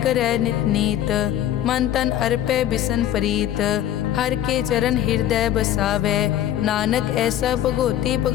करै नित नीत, मन तन अर्पै बिसन प्रीत। हर के चरण हृदय बसावै, नानक ऐसा भगोती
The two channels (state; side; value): quieter; right; 11.7 dB